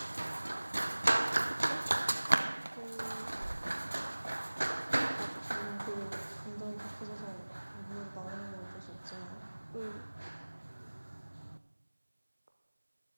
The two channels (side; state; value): both; inverted; correlation -1.00